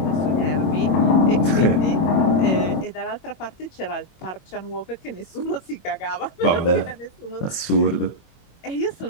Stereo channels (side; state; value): right; late; 24 ms